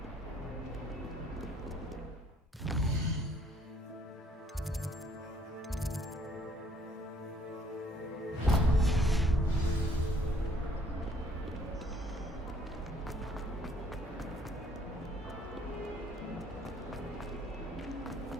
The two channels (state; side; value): normal; both; correlation 0.61